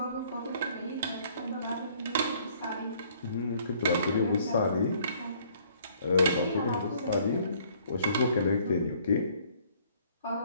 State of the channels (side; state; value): both; inverted; correlation -0.61